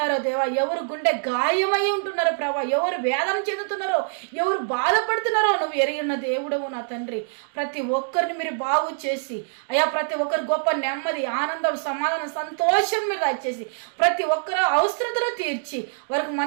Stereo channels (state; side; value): silent; left; digital silence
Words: దేవా, ఎవరు గుండె గాయమై ఉంటున్నారో ప్రభా, ఎవరు వేదన చెందుతున్నారో, ఎవరు బాధపడుతున్నారో నువ్వు ఎరిగిన దేవుడవు నా తండ్రి. ప్రతి ఒక్కరిని మీరు బాగు చేసి అయ్యా ప్రతి ఒక్కరు గొప్ప నెమ్మది, ఆనందం, సమాధానం, సంతోషం మీరు దయచేసి ప్రతి ఒక్కరు అవసరతలు తీర్చి వారికి